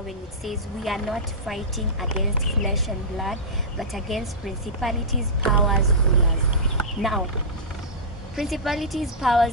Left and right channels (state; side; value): normal; both; correlation -0.15